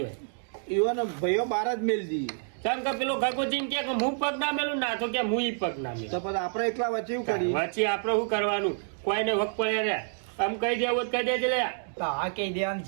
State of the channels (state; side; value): silent; left; digital silence